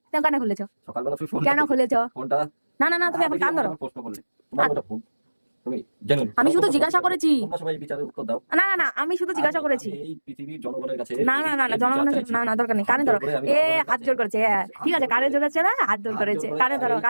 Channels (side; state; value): both; inverted; correlation -1.00